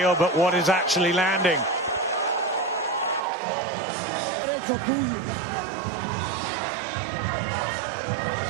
but what is actually landing?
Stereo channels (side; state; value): left; drops out; at 3.2 s